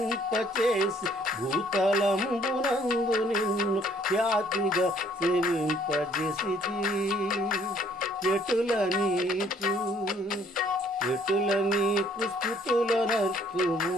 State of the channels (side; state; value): both; normal; correlation 0.62